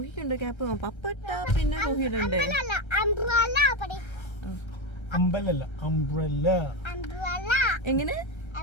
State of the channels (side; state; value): right; late; 1.3 ms